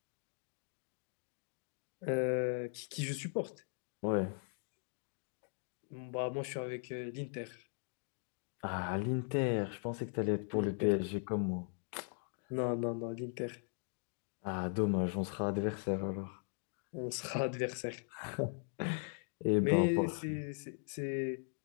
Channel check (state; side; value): silent; right; 52 dB below the other